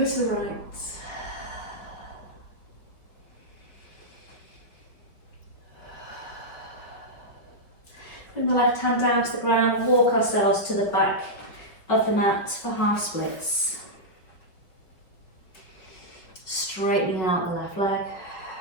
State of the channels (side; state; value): right; late; 5.2 ms